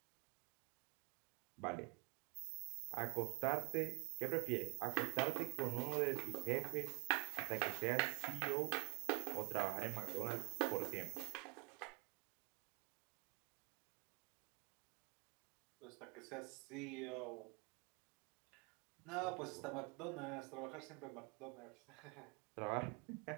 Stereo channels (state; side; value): quieter; left; 31.6 dB